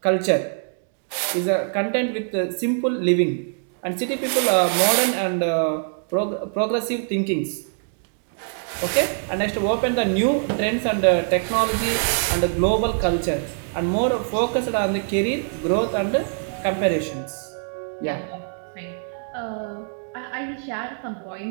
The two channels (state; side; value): silent; left; 63 dB below the other